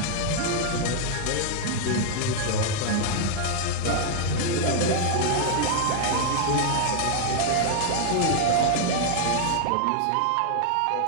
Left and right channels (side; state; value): both; different; correlation -0.01